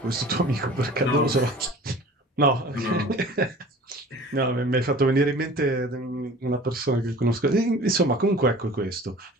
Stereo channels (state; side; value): normal; both; correlation 0.44